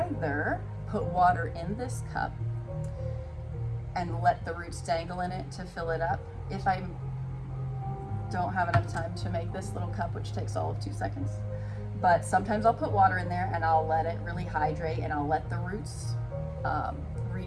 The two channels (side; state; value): both; identical; correlation 1.00